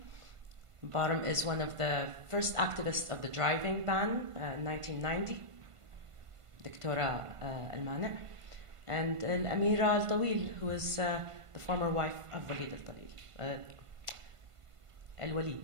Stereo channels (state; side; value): late; left; 1.5 ms